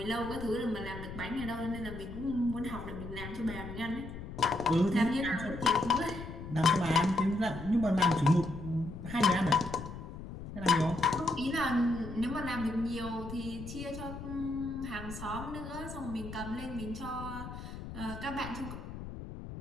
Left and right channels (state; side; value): noise; left; rumble, 10 dB below the sound